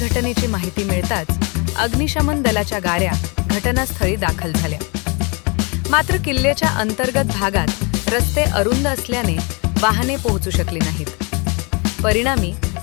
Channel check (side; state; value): right; quieter; 31.3 dB